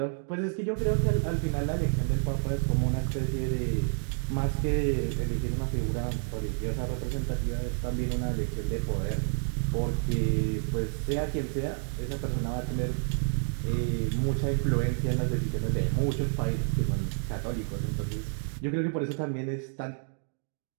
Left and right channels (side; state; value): left; silent; 58 dB below the other